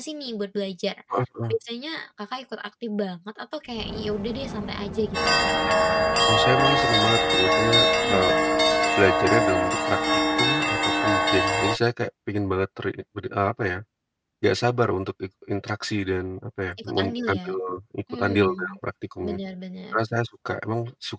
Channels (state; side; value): identical; both; correlation 1.00